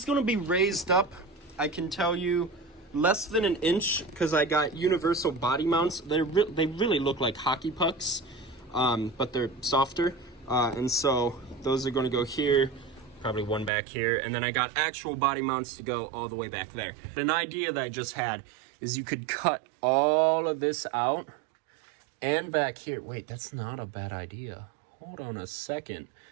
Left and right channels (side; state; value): left; drops out; at 13.7 s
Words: going to be raised up, I can tell you, less than an inch, because I got universal body mounts. They really look like hockey pucks, but they're softer. And so those are going to go here, probably one back here, and then I got actual body mounts to go all the way back there. An idea that I just had is you could cut all of this out and back here. Wait, that's not a bad idea. Hold on a second.